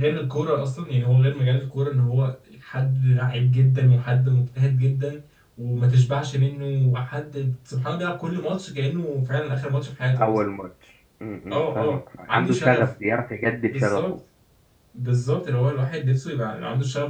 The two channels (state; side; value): identical; both; correlation 1.00